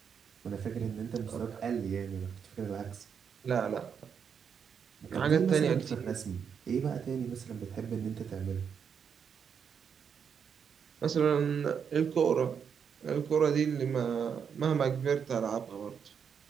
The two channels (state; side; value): quieter; left; 7.1 dB